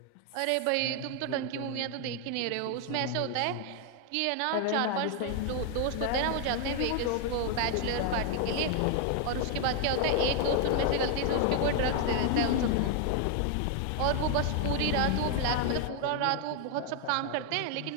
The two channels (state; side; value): different; both; correlation 0.00